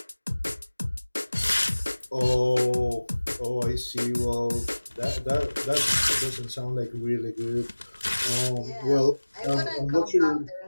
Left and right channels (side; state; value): both; inverted; correlation -1.00